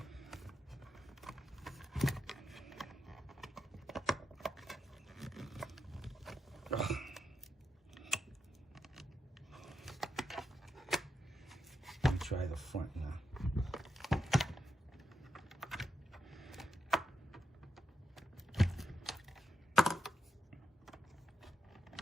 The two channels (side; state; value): both; normal; correlation 0.85